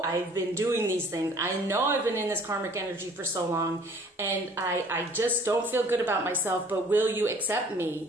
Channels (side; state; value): both; normal; correlation 0.54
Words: I've been doing these things. I know I've been in this karmic energy for so long, and I just don't feel good about myself, but will you accept